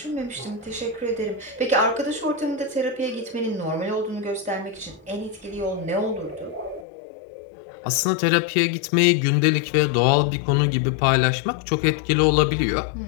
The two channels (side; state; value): right; drops out; at 6.9 s